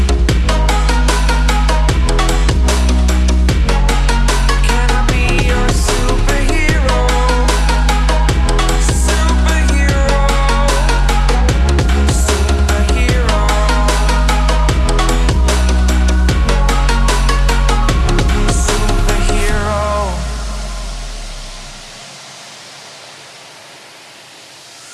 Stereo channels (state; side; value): identical; both; correlation 1.00